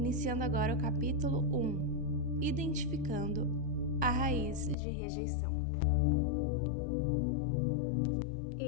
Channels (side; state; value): right; drops out; at 4.8 s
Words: agora o capítulo 1, Identificando a Raiz de Rejeição.